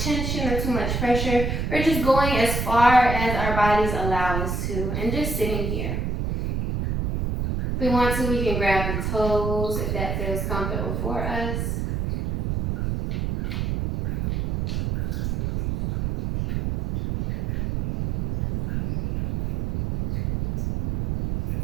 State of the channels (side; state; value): right; noise; rumble, 2 dB below the sound